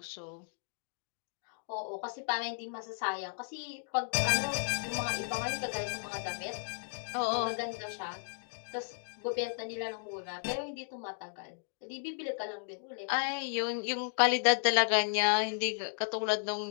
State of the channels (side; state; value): right; silent; digital silence